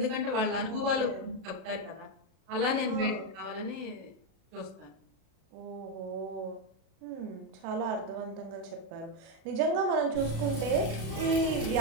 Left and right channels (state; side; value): late; left; 37 ms